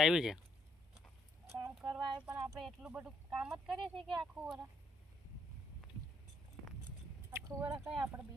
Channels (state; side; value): normal; both; correlation 0.70